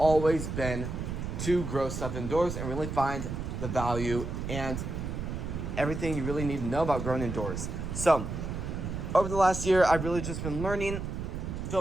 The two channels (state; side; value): noise; right; rumble, 5 dB below the sound